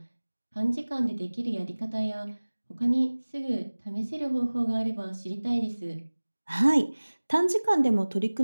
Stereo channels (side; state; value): both; inverted; correlation -1.00